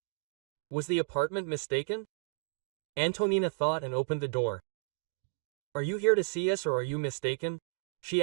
Was the apartment mistaken? Antonina thought and opened the door. Are you here to see us or are you mistaken? She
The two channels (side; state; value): left; quieter; 33.5 dB